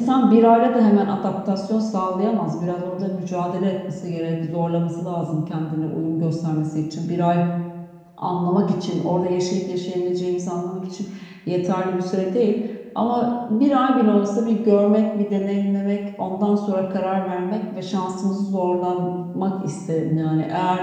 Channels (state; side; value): identical; both; correlation 1.00